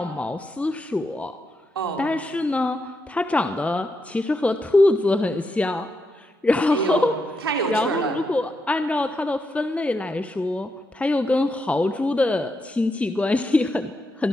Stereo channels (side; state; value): both; normal; correlation 0.83